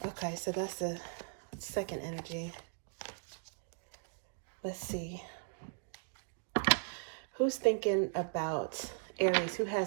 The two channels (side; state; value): left; silent; digital silence